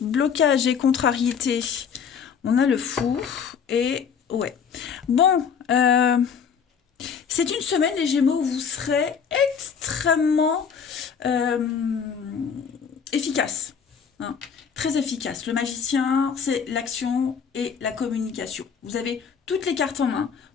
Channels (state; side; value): quieter; right; 6.8 dB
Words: Blocage et contrariété. On a le fou et... Ouais. Bon, c'est une semaine, les Gémeaux, où vous serez extrêmement efficace. Hein, très efficace. Le magicien, c'est l'action et la communication. Vous avez toutes les cartes en main